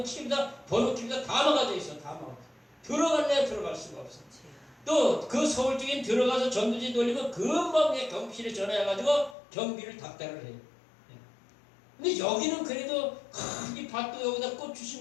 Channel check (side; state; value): right; drops out; at 9.3 s